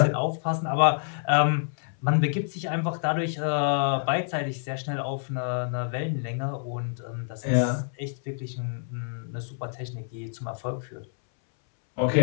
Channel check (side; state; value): right; silent; 60 dB below the other